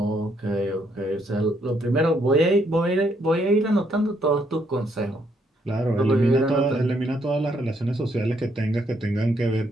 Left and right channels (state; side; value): normal; both; correlation 0.73